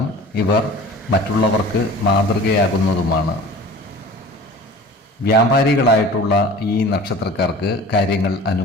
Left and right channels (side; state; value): both; normal; correlation 0.42